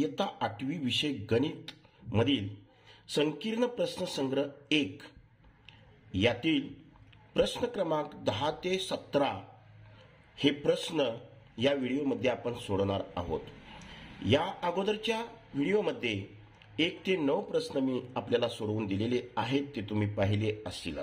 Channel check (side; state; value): both; identical; correlation 1.00